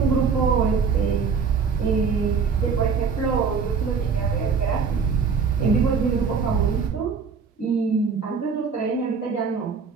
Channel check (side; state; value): left; quieter; 5.6 dB